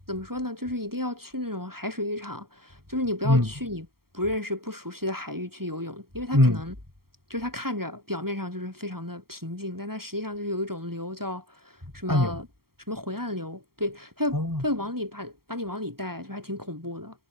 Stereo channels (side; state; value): left; late; 0.94 ms